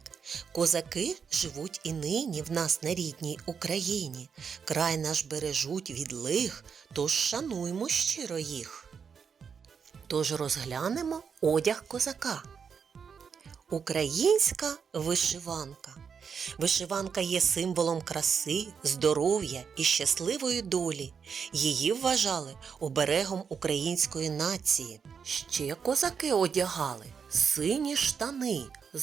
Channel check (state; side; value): quieter; left; 6.5 dB